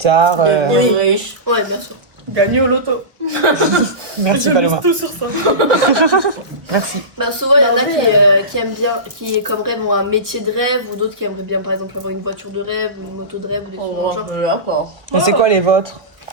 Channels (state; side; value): late; left; 1.2 ms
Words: Devenir riche. Ouais, bien sûr. Gagner au loto. Merci Je Paloma. mise tout sur ça. Merci. Souvent, il y en a qui aiment bien, qui comme rêve ont un métier de rêve, ou d'autres qui aimeraient bien, par exemple, avoir une voiture de rêve, ou une moto de rêve, ou des trucs dans le genre. D'accord. Et c'est quoi les vôtres?